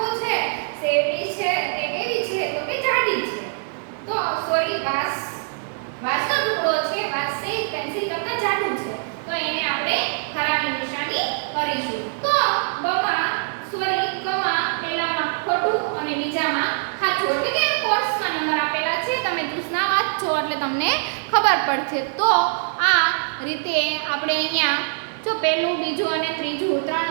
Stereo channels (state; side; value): silent; left; digital silence